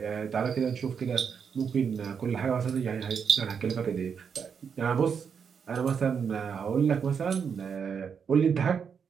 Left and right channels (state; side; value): quieter; left; 6.7 dB